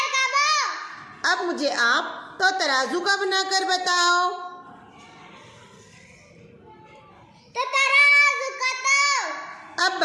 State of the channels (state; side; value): identical; both; correlation 1.00